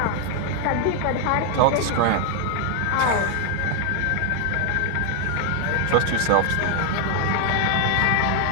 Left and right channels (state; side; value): different; both; correlation 0.01